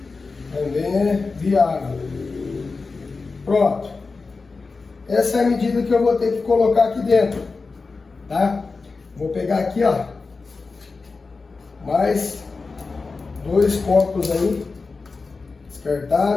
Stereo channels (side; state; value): right; quieter; 4.2 dB